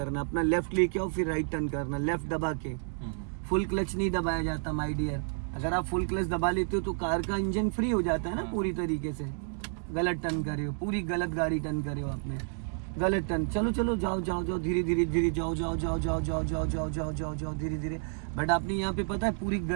अपना लेफ्ट लेके आओ, फिर राइट टर्न करना, लेफ्ट दबा के। फुल क्लच नहीं दबाया जाता माय डियर। अगर आप फुल क्लच दबा लेते हो तो कार का इंजन फ्री हो जाता है ना पूरी तरीके से। गलत टर्न करे हो, पूरी गलत गाड़ी टर्न करे हो आपने, गलत टर्न। चलो चलो जाओ जाओ जाओ, धीरे धीरे धीरे जाओ जाओ जाओ जाओ जाओ जाओ जाओ जाओ जाओ जाओ धीरे धीरे। बट आपने यहाँ पे पता है पूरी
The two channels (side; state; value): left; silent; 56 dB below the other